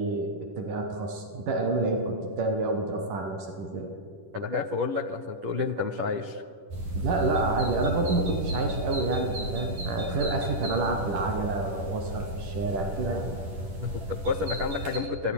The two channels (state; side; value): late; left; 10 ms